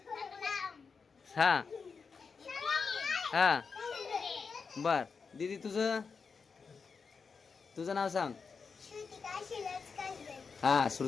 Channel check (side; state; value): right; quieter; 5.2 dB